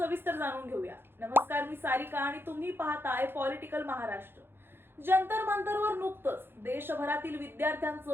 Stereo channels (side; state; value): left; late; 0.10 ms